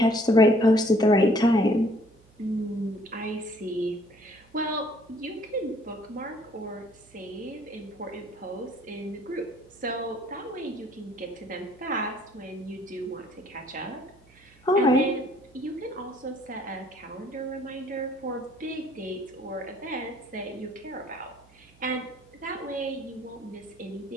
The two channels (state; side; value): noise; right; hum, 28 dB below the sound